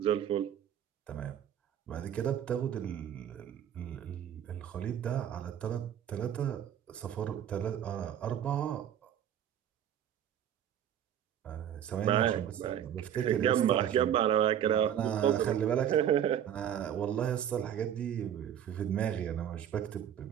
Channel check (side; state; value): left; quieter; 9.9 dB